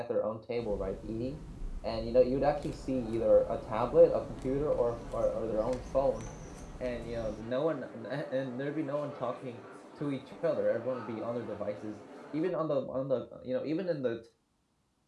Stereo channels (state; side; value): identical; both; correlation 1.00